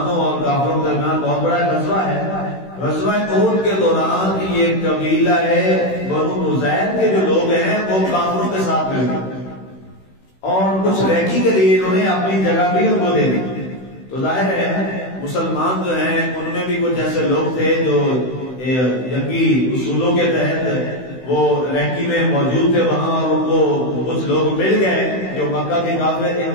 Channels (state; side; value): late; right; 16 ms